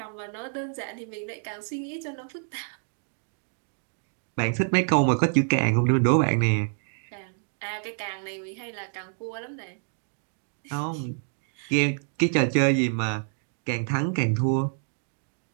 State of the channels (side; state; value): left; silent; 60 dB below the other